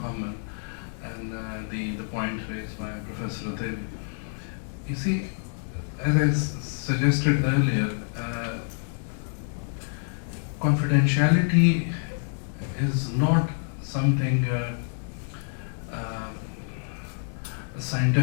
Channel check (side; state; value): right; silent; 60 dB below the other